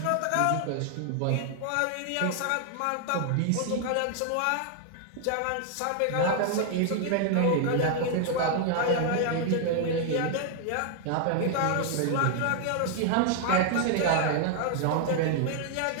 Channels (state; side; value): different; both; correlation 0.00